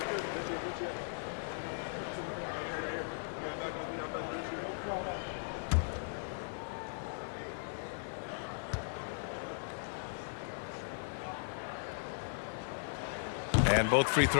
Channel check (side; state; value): right; silent; digital silence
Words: And both free